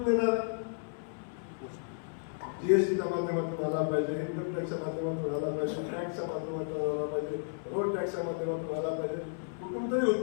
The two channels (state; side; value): silent; right; 56 dB below the other